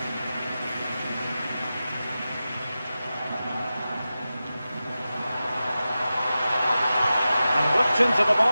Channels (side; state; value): both; inverted; correlation -0.94